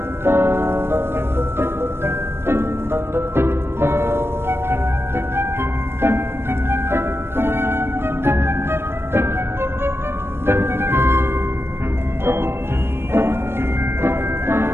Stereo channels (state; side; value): late; left; 0.12 ms